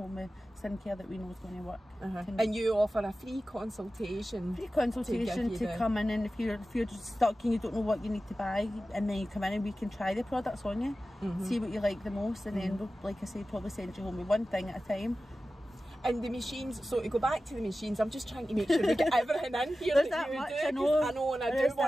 with skincare that we know is going to work. And you offer a free consultation. To come in, and if you're just stuck and you don't know what you need to buy, and then you come in and we can try the products on you, see what you like the most, and then we'll, like I say, probably send you home with one thing at a time. And the machines, so to go back to the machines, I'm just trying to make sure we get everything in here that you do. I know, and I do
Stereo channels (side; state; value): both; normal; correlation 0.94